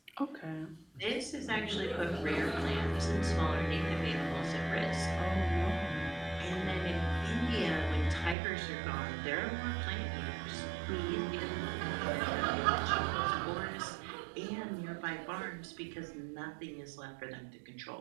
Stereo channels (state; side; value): drops out; left; at 8.3 s